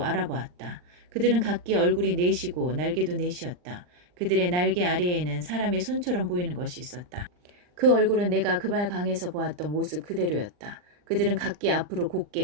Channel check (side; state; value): left; late; 39 ms